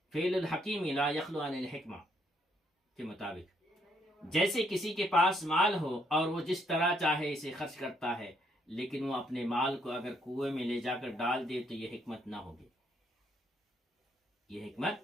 فعل الحکیم لا یخلو عن الحکمہ کے مطابق۔ جیسے کسی کے پاس مال ہو اور وہ جس طرح چاہے اسے خرچ کرتا ہے، لیکن وہ اپنے مال کو اگر کنویں میں لے جا کر ڈال دے تو یہ حکمت نہ ہوگی، یہ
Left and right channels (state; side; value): normal; both; correlation 0.71